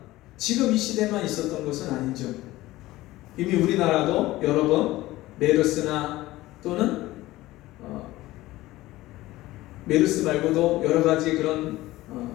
지금 이 시대만 있었던 것은 아니죠. 이미 우리나라도 여러 번 메르스나 또는 메르스 말고도 여러 가지 그런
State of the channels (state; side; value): quieter; right; 17.4 dB